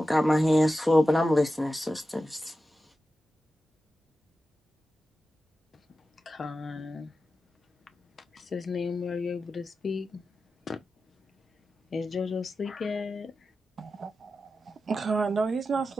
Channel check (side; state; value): both; normal; correlation 0.92